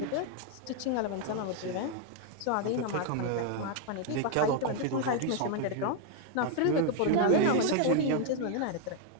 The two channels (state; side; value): different; both; correlation 0.01